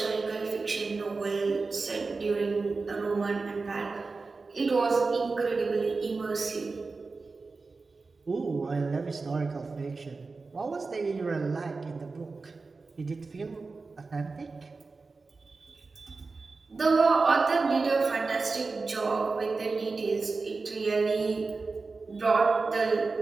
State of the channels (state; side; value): quieter; left; 4.0 dB